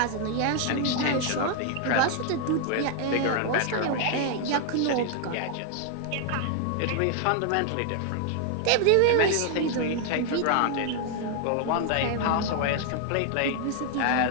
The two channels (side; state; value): both; different; correlation 0.00